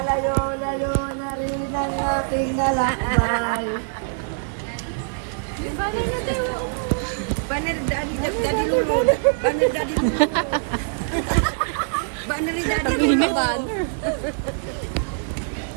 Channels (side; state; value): left; silent; digital silence